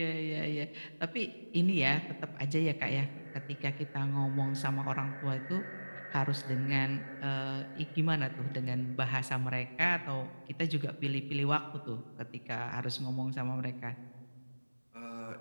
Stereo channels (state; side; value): inverted; both; correlation -1.00